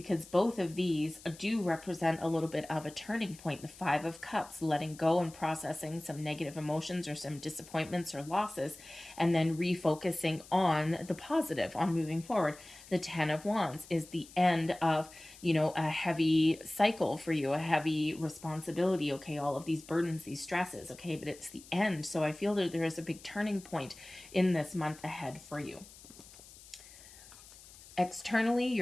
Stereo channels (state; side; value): noise; left; hiss, 20 dB below the sound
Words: both of these do represent a little bit of a turning point. The Five of Cups, letting go and processing some negative emotions or some disappointments or losses, and then refocusing on the positive, on moving forward. The Ten of Wands is the end of, a heavy cycle for you, a heavy responsibility, okay, all of these burdens, these stresses, okay, but it's the end. So I feel that there is a big turning point in this month ahead for you. Externally,